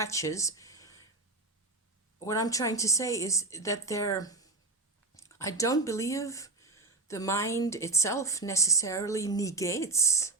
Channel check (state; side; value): quieter; left; 3.3 dB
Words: What I'm trying to say is that I don't believe the mind itself necessarily negates,